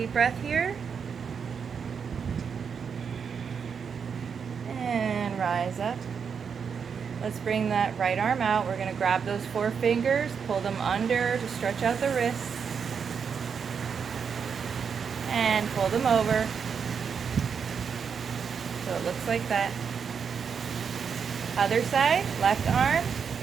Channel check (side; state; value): left; quieter; 6.5 dB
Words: breath here. And rise up. Let's bring that right arm out. We're going to grab those 4 fingers, pull them under to stretch out the wrists, and pull them over. So it looks like that. Other side, left arm.